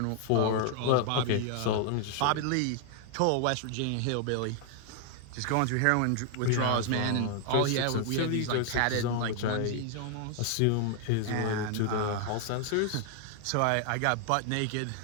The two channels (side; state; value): both; different; correlation 0.00